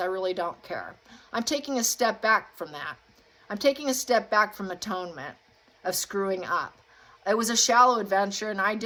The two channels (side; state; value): both; identical; correlation 1.00